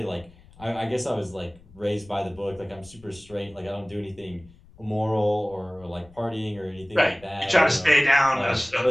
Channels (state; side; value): noise; left; rumble, 24 dB below the sound